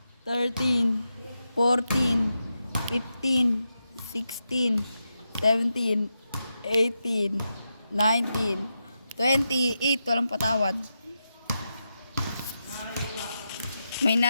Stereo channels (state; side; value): inverted; both; correlation -0.88